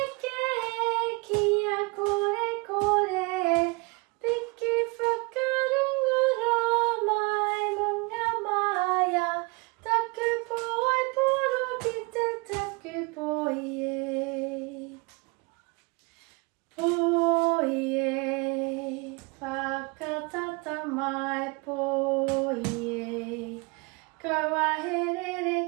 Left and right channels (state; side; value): quieter; left; 28.7 dB